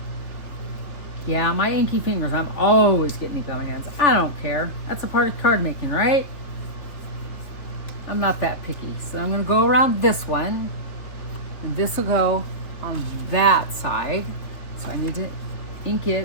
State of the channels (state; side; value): late; right; 3.5 ms